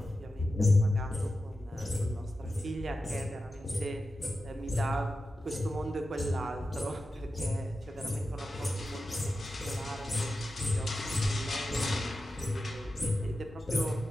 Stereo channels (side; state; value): both; normal; correlation 0.92